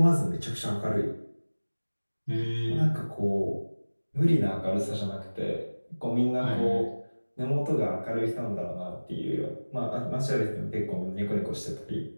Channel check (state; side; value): inverted; both; correlation -1.00